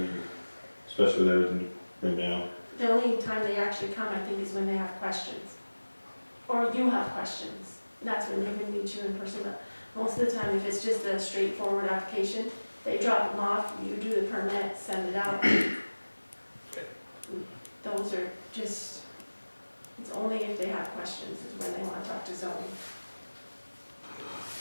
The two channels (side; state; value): both; inverted; correlation -1.00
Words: especially with everything right now. The only time they actually come, I think, is when they have questions. Or you have questions. that's when they would meet you in person, but most of the time, if it's just a straightforward application, they drop them off, you do the permit, send it out. Those are just, it's only if they have questions is when they want to talk to zoning.